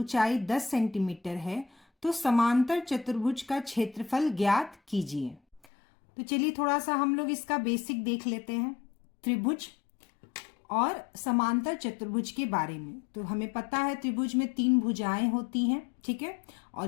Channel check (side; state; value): right; drops out; at 5.7 s